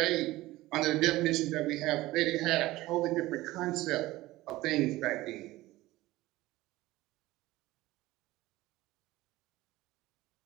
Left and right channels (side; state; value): left; quieter; 17.8 dB